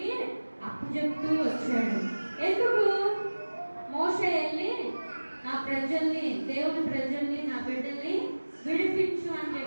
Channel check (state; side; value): inverted; both; correlation -1.00